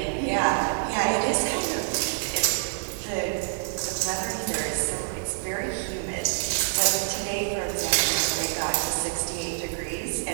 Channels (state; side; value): silent; left; 60 dB below the other